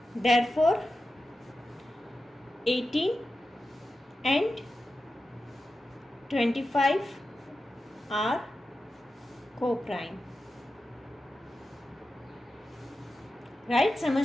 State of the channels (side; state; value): both; normal; correlation 0.92